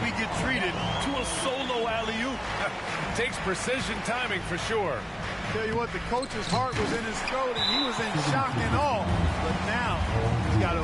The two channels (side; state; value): both; identical; correlation 1.00